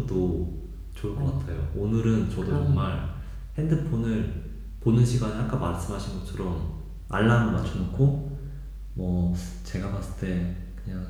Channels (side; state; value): both; identical; correlation 1.00